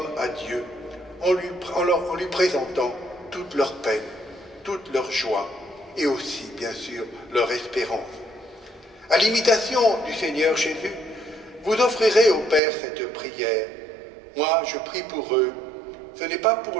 à Dieu en lui présentant toute leur peine, toute leur joie et aussi, bien sûr, leur espérance. À l'imitation du Seigneur Jésus, vous offrirez au Père cette prière. Moi, je prie pour eux. Ce n'est pas pour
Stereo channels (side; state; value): left; drops out; at 12.6 s